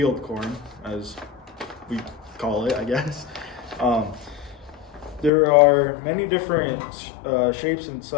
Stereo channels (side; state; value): right; drops out; at 5.3 s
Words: corn, as we call it, I guess. Um, There are many different shapes and